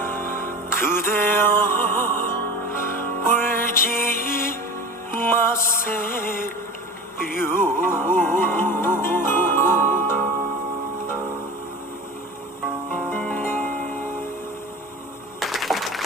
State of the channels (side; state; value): both; normal; correlation 0.33